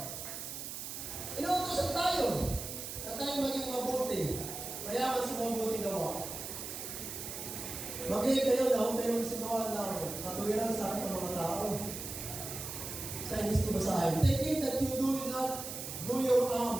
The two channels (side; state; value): right; noise; hiss, 7 dB below the sound